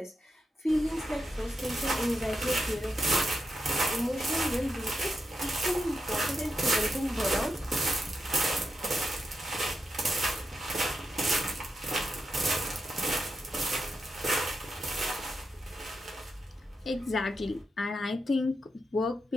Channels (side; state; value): both; normal; correlation 0.86